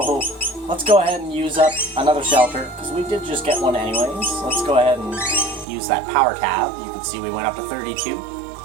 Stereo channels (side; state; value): left; drops out; at 5.7 s